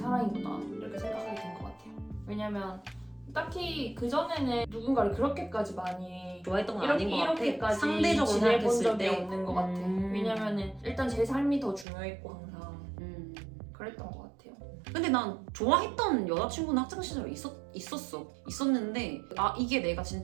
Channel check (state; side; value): drops out; left; at 11.9 s